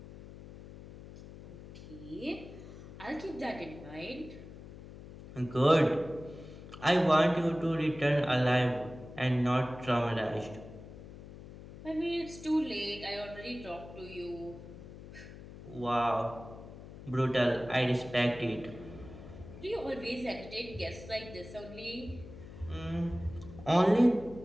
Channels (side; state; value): left; noise; hum, 15 dB below the sound